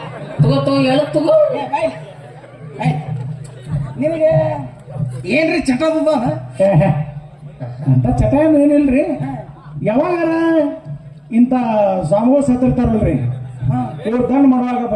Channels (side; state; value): both; identical; correlation 1.00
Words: ತಗೋ ಹೇಳ ತಗೋ ನಿನಗೆ ಏನ್ರಿ ಚಟ ಅಂತ ಚಟ ಏನಿಲ್ರಿ ಯಾವಾಗಾರ ಇಂಥ ಸ್ವಾಮಿಗಳು ಸತ್ತಿರ್ತಾರಲ್ರಿ ಇವ್ರು ದಂಡ ಮಾಡುವಾಗ